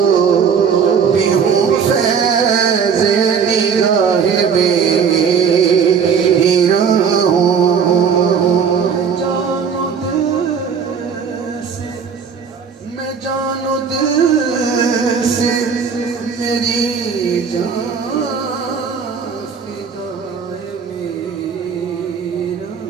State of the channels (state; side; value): quieter; left; 6.5 dB